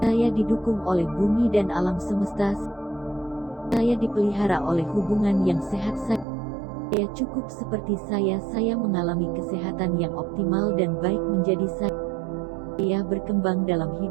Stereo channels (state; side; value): drops out; left; at 6.2 s